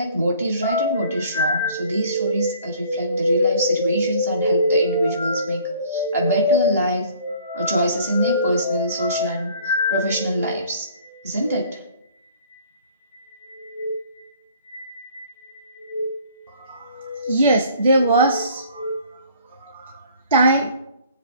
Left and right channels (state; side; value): inverted; both; correlation -0.54